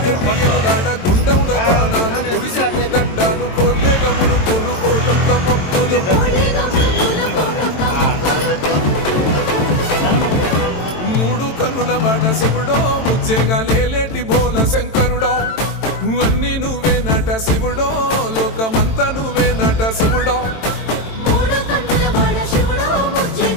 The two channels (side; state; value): right; late; 22 ms